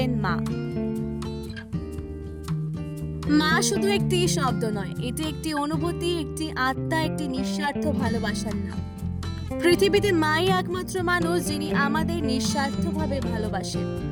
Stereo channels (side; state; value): both; identical; correlation 1.00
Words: মা। মা শুধু একটি শব্দ নয়, এটি একটি অনুভূতি, একটি আত্মা, একটি নিঃস্বার্থ ভালোবাসার নাম। পৃথিবীতে মাই একমাত্র মানুষ যিনি আমাদের নিঃস্বার্থভাবে ভালোবাসেন,